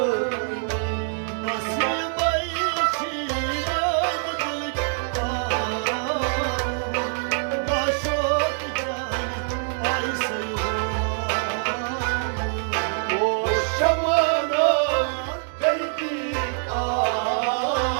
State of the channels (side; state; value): left; silent; 60 dB below the other